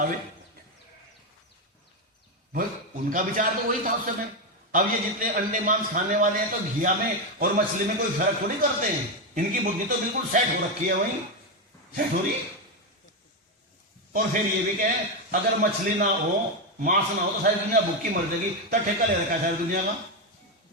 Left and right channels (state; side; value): normal; both; correlation 0.08